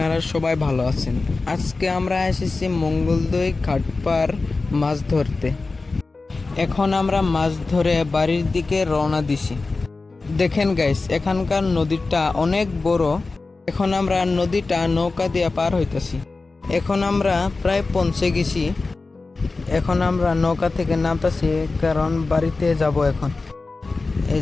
সবাই ভালো আছেন। আজকে আমরা এসেছি মঙ্গলদৈ ঘাটপার মাছ ধরতে। এখন আমরা মাছ ধরে বাড়ির দিকে রওনা দিছি। দেখেন গাইস, এখানকার নদীটা অনেক বড়। এখন আমরা নদীটা নৌকা দিয়ে পার হইতেছি। এখন আমরা প্রায় পৌঁছে গেছি। এখন আমরা নৌকা থেকে নামতেছি, কারণ বাড়িতে যাব এখন। এই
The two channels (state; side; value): quieter; right; 3.7 dB